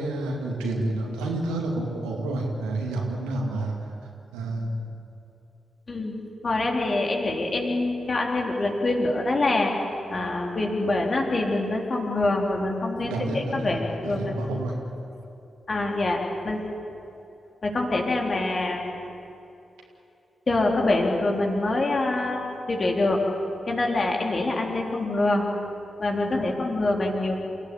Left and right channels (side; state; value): both; normal; correlation 0.89